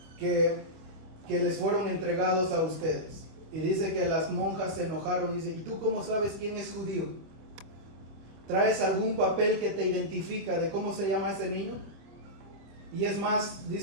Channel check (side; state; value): left; late; 25 ms